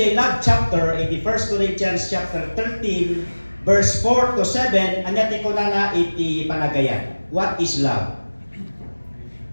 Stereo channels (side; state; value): both; inverted; correlation -1.00